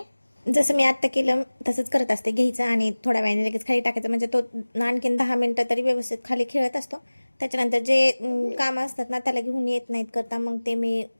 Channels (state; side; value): inverted; both; correlation -1.00